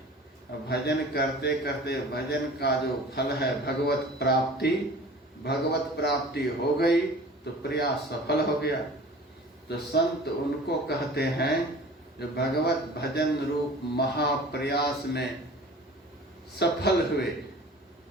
भजन करते करते भजन का जो फल है भगवत प्राप्ति, भगवत प्राप्ति हो गई तो प्रयास सफल हो गया। तो संत उनको कहते हैं जो भगवत भजन रूप महाप्रयास में सफल हुए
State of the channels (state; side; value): normal; both; correlation 0.43